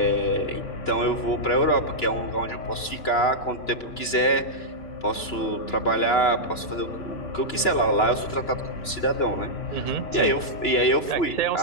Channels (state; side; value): late; right; 2.9 ms